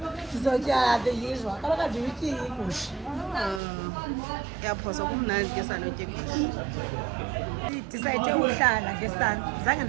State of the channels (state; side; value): drops out; left; at 3.6 s